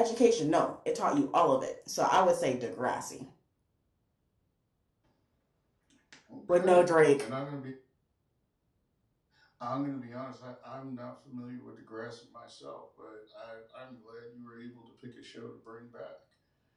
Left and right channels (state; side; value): identical; both; correlation 1.00